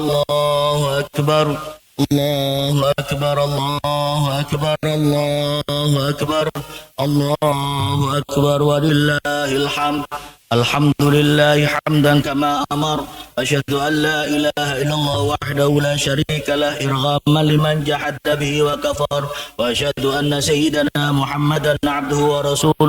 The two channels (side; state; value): both; identical; correlation 1.00